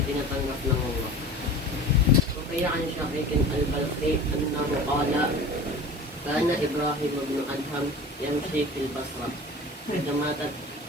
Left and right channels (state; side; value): normal; both; correlation 0.38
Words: ng Allah. So kaya ang Shaykh al-Balkhi annahu qala kana Ibrahim ibn Adham yamshi fil Basra